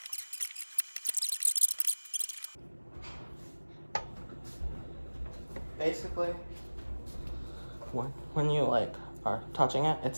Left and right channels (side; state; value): both; inverted; correlation -1.00